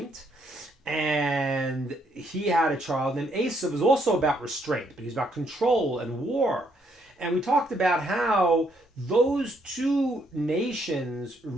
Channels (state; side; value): normal; both; correlation 0.72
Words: and he had a child named Esau, was also about restraint, but he's about control and war. And we talked about how those two nations